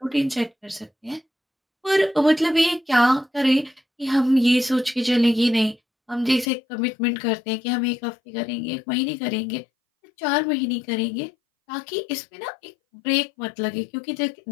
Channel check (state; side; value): drops out; right; at 6.5 s